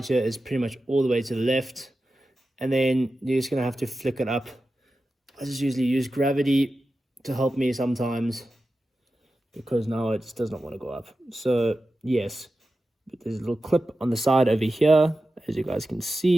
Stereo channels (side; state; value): both; normal; correlation 0.93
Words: here is pretty much all the way to the left. And then you're just going to have to flick it up. I just usually use gravity to help me sometimes, because now it just does not want to go up. So yes, but there's a little clip on the side over here, as you guys can